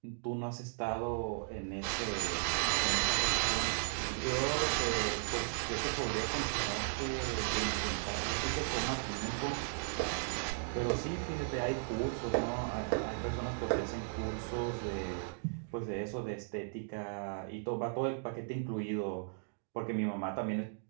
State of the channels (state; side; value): silent; left; digital silence